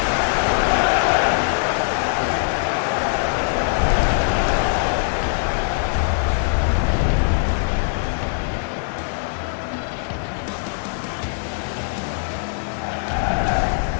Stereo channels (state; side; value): silent; right; digital silence